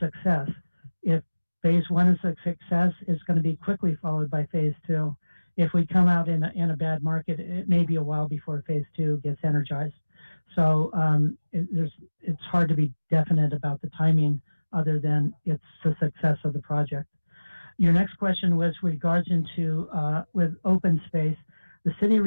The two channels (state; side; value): inverted; both; correlation -1.00